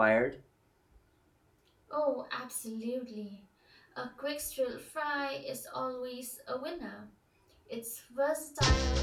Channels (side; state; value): both; identical; correlation 1.00